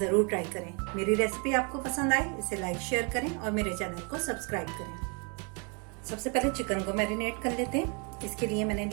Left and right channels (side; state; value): left; quieter; 34.4 dB